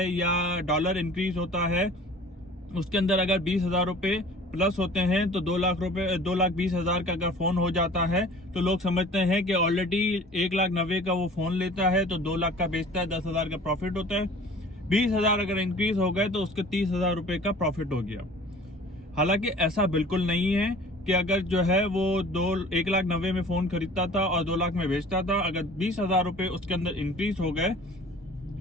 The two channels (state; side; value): normal; both; correlation 0.46